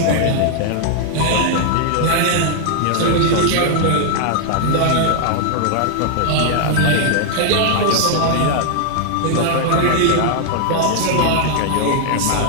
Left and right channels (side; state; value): both; different; correlation -0.01